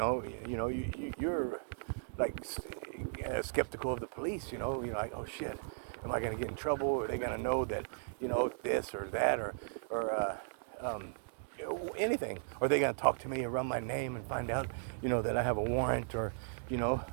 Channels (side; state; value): left; silent; 53 dB below the other